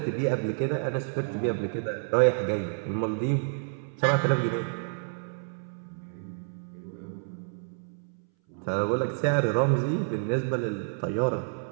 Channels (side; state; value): left; silent; 59 dB below the other